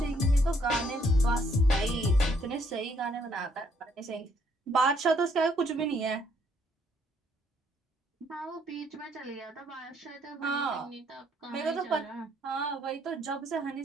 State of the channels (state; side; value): normal; both; correlation 0.68